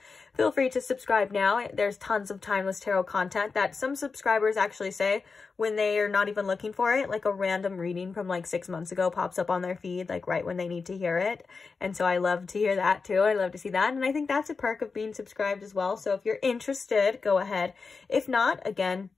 feel free to subscribe now. There's tons of timeless tarot content that some subscribers actually say when they are not even looking for it, like a random reading from like 6 months ago pops up on their feed, like right when they need to hear it. And so I love to hear that too. I love to see that. And I think that's a perk of being subscribed as well. So if you're interested, go ahead. If not, again,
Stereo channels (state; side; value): quieter; right; 4.7 dB